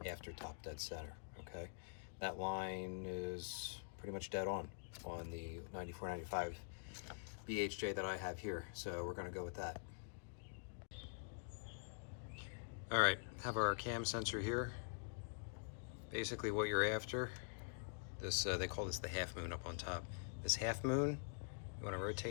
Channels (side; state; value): right; silent; digital silence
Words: after top dead center, okay? That line is pretty much dead on the 9495 BHJ that I have here. So we're going to go with that. All right, have our cam sensor here. Basically what you're after, this they call this the half moon up on top. This half moon You want to